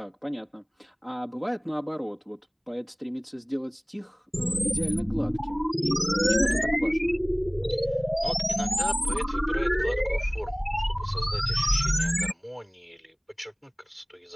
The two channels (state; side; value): identical; both; correlation 1.00